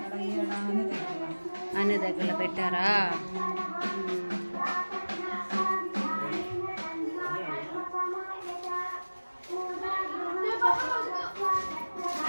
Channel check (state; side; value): inverted; both; correlation -1.00